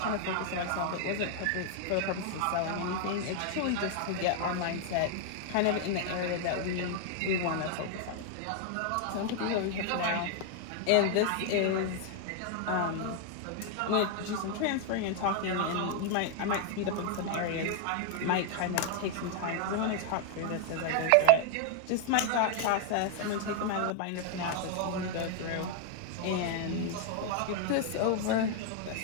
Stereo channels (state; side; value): different; both; correlation 0.00